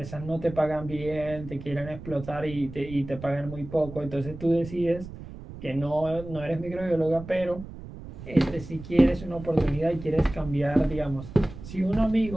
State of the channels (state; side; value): noise; right; rumble, 13 dB below the sound